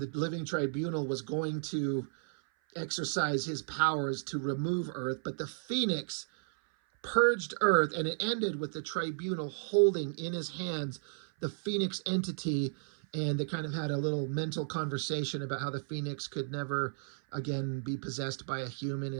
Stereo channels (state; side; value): silent; left; 55 dB below the other